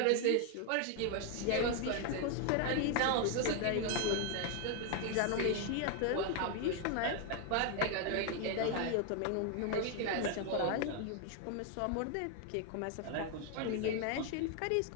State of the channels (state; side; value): different; both; correlation 0.01